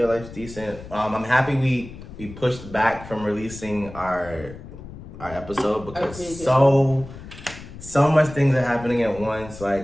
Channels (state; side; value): noise; left; rumble, 15 dB below the sound